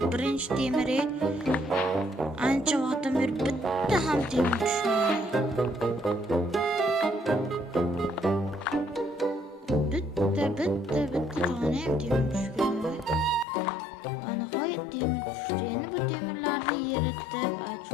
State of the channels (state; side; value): drops out; right; at 13.5 s